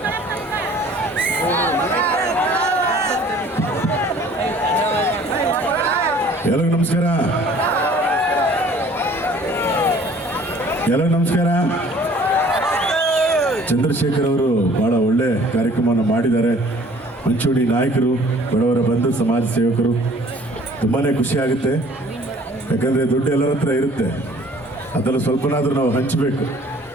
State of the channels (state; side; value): normal; both; correlation 0.53